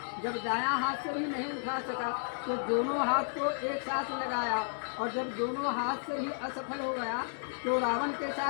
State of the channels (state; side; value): silent; right; digital silence